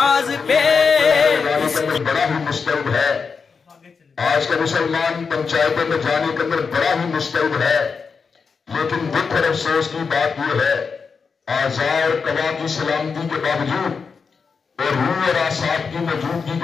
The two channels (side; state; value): right; quieter; 5.4 dB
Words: پہ بڑا ہی مستعد ہے آج کا مسلمان پنچایتوں میں جانے کے اندر بڑا ہی مستعد ہے لیکن دکھ اور افسوس کی بات یہ ہے اعضاء اور قوا کی سلامتی کے باوجود اور روح اور اعصاب کی موجودگی